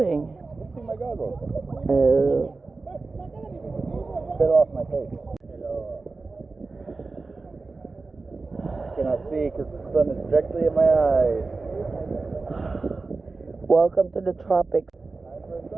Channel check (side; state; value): left; quieter; 3.8 dB